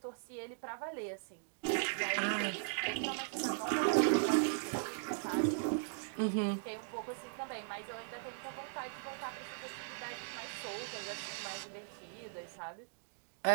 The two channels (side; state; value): left; silent; digital silence